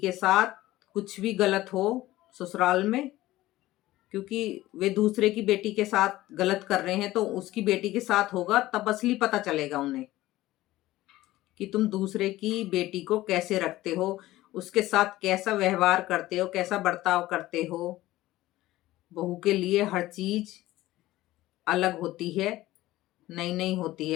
साथ कुछ भी गलत हो ससुराल में, क्योंकि वे दूसरे की बेटी के साथ गलत कर रहे हैं तो उसकी बेटी के साथ होगा तब असली पता चलेगा उन्हें कि तुम दूसरे की बेटी को कैसे रखते हो, उसके साथ कैसा व्यवहार करते हो, कैसा बर्ताव करते हो। बहू के लिए हर चीज अलग होती है, नई नई होती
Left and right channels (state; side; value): quieter; right; 16.6 dB